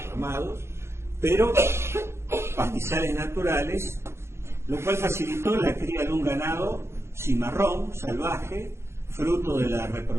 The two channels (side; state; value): left; late; 0.13 ms